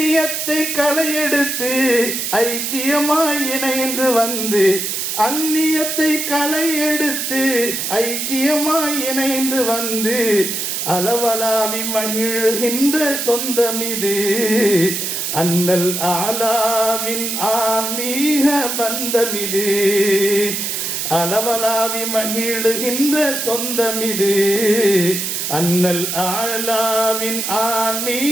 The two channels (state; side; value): noise; right; hiss, 2 dB below the sound